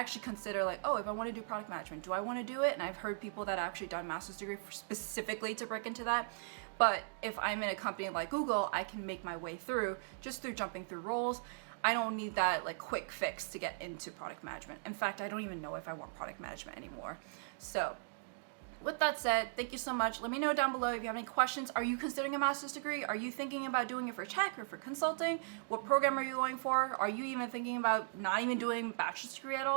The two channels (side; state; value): left; silent; digital silence